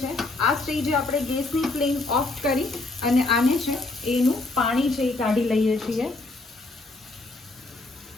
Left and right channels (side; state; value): right; quieter; 3.1 dB